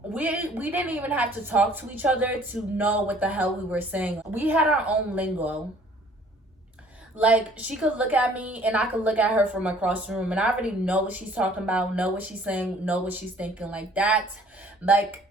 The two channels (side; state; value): both; normal; correlation 0.56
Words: we didn't even have to talk to each other to know what the hell we were saying. We had our own lingo. Like, she could look at me and I could look at her from across the room, and I already know what she's talking about, know what she's saying, know what she's thinking.